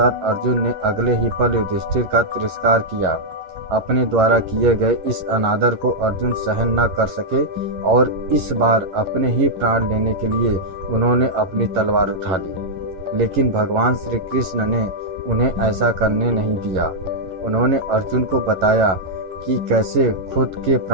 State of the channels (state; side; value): late; left; 11 ms